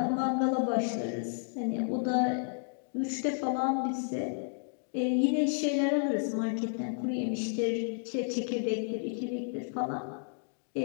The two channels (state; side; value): silent; right; digital silence